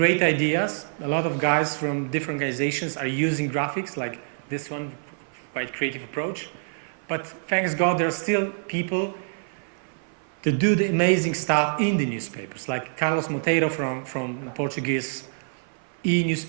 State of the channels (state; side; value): silent; left; 56 dB below the other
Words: ideas. A lot of guys from different organizations are using graphics like this one, quite creative approach. But thanks God, there are still people to do the amazing stuff in the newspapers. Like Carlos Monteiro from Portuguese